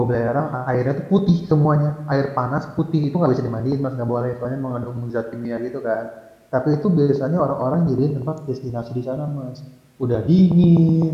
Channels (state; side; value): identical; both; correlation 1.00